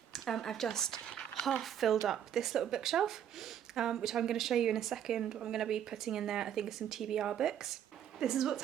I've just half filled up this little bookshelf, which I'm going to show you in a second. I'm going to be putting in there, I think, some TBR books. This is what's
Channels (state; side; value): quieter; left; 9.6 dB